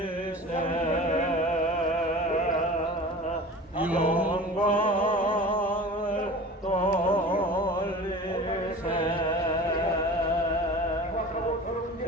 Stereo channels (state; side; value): normal; both; correlation 0.38